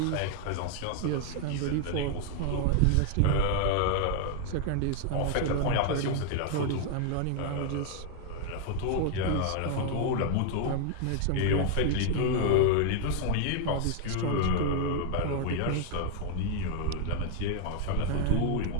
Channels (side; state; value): both; different; correlation 0.00